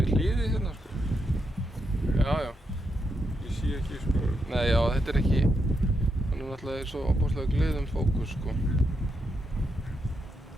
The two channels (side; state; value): both; normal; correlation 0.82